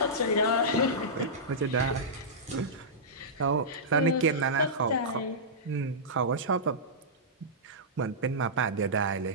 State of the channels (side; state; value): both; normal; correlation -0.14